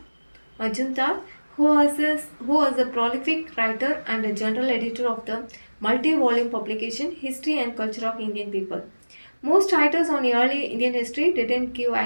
who was a prolific writer and a general editor of the multi volume publication History and Culture of Indian People. Most writers on early Indian history didn't give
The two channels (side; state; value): both; inverted; correlation -1.00